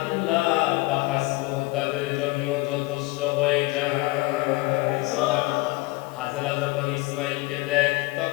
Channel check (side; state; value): right; quieter; 22.2 dB